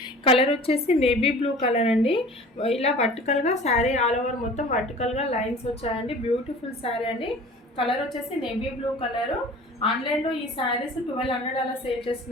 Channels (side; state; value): both; normal; correlation 0.43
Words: కలర్ వచ్చేసి నేవీ బ్లూ కలర్ అండి. ఇలా వర్టికల్గా శారీ ఆల్ ఓవర్ మొత్తం వర్టికల్గా లైన్స్ వచ్చాయండి. బ్యూటిఫుల్ శారీ అండి. కలర్ వచ్చేసి నేవీ బ్లూ కలరు. ఆన్లైన్లో ఈ శారీస్ 1200 అలా సేల్